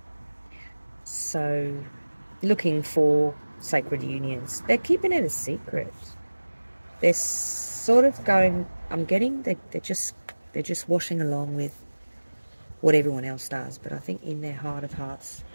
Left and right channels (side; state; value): both; inverted; correlation -1.00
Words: So looking for sacred unions. They're keeping it a secret. They're sort of going, I'm getting they're just washing along with what everyone else does, but I think in their heart of hearts